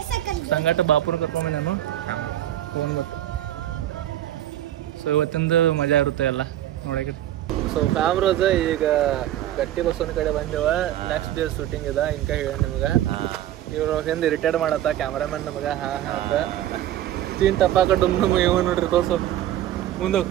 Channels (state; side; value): quieter; left; 12.7 dB